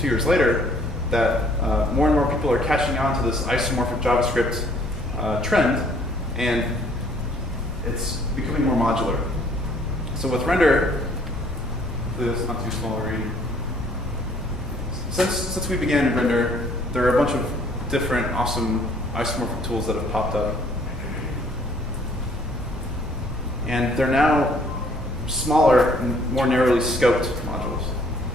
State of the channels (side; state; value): both; normal; correlation 0.60